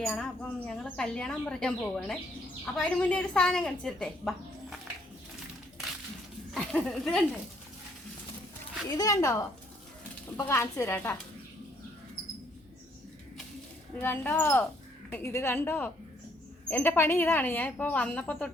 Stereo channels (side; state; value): both; normal; correlation 0.67